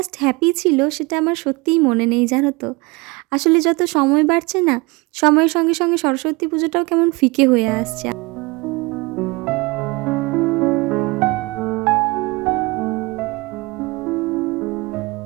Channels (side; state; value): left; quieter; 24.9 dB